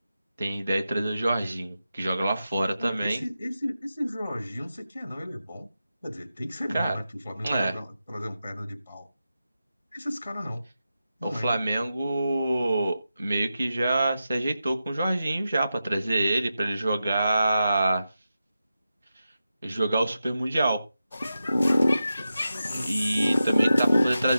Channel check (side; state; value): both; inverted; correlation -0.91